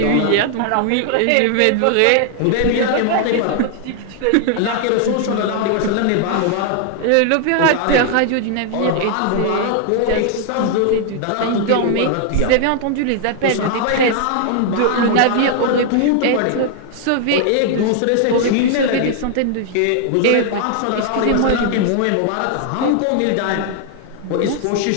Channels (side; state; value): both; different; correlation 0.00